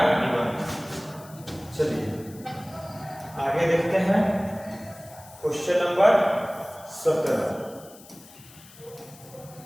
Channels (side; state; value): left; noise; hiss, 21 dB below the sound